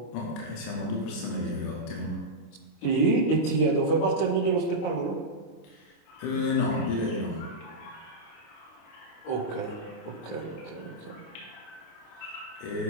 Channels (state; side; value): late; right; 26 ms